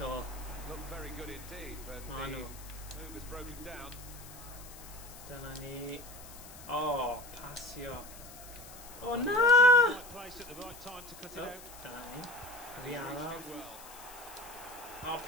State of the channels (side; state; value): left; noise; hiss, 16 dB below the sound